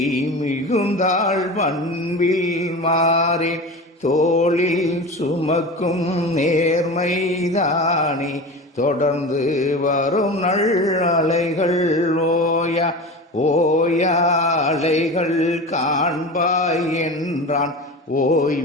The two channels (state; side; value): normal; both; correlation 0.30